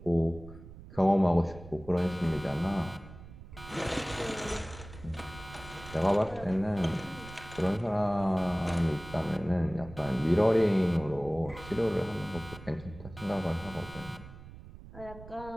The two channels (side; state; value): right; noise; rumble, 16 dB below the sound